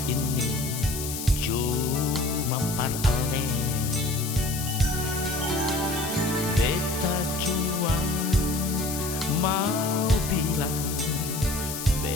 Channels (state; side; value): noise; left; hiss, 6 dB below the sound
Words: ini cuma paralel. Beta cuma mau bilang